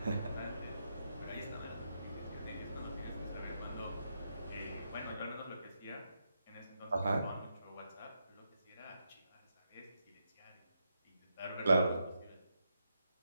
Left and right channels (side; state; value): both; inverted; correlation -0.83